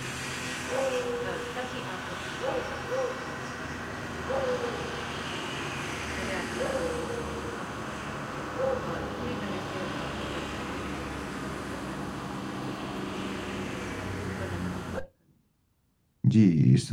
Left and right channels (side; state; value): both; identical; correlation 1.00